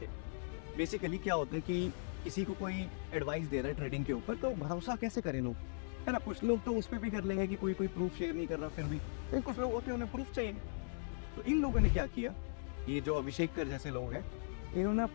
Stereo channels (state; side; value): silent; right; digital silence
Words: बेसिकली क्या होता है कि किसी को कोई एडवाइस दे रहा है ट्रेडिंग के ऊपर, तो भरोसा कैसे करें लोग, है ना। कुछ लोग तो उस पर भी कर लेंगे कि कोई प्रूफ शेयर नहीं कर रहा, फिर भी तो कुछ लोग होते हैं उन्हें प्रूफ चाहिए। तो इन लोगों ने क्या किया, ये जो अभिषेक कर जैसे लोग हैं, इन्होंने